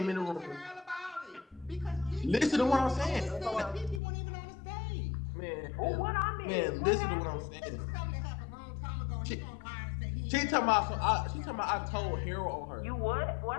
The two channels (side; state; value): right; drops out; at 4.0 s